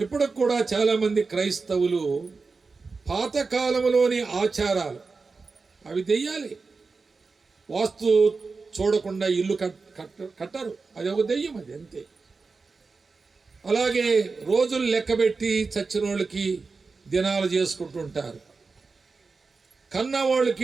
కూడా చాలామంది క్రైస్తవులు పాతకాలంలోని ఆచారాలు, అవి దెయ్యాలి. వాస్తు చూడకుండా ఇల్లు కట్టరు, అది ఒక దెయ్యం, అది అంతే. అలాగే రోజులు లెక్కబెట్టి చచ్చిన వాళ్ళకి దినాలు చేసుకుంటుంటారు,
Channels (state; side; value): quieter; left; 4.3 dB